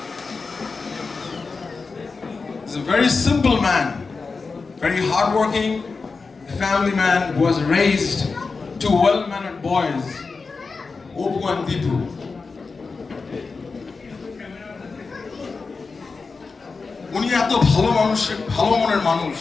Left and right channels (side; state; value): right; quieter; 4.4 dB